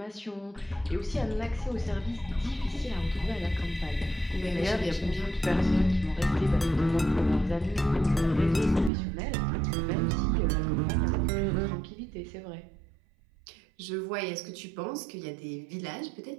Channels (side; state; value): left; drops out; at 8.9 s